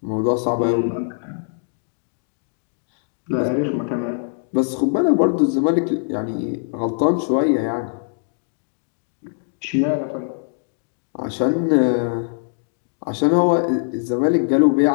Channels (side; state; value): right; silent; digital silence